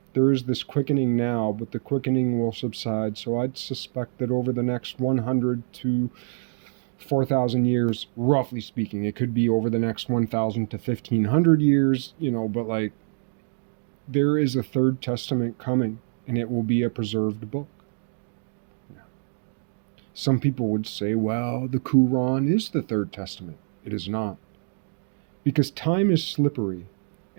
there is this quickening now, but the quickening will subside. So I'd suspect that over the next 100 to 4,000 years, roughly speaking, it could be over the next 1,000 to 1,500 years, but like, there is a third testament coming, and it will be a preserved book. Yeah. Some people would say, well, the Quran is the third testament. It is not. Because time is slippery,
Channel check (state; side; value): silent; left; digital silence